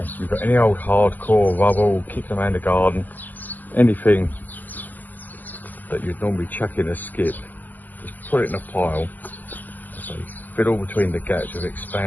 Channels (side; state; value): right; late; 0.084 ms